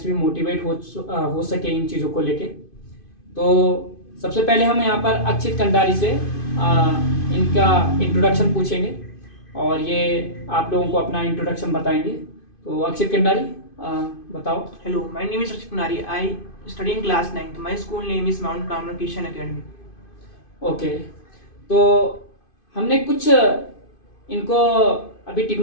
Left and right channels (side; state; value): right; late; 2.5 ms